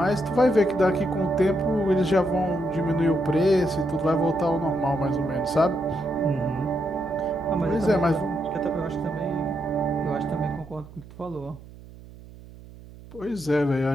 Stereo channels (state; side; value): noise; right; hum, 19 dB below the sound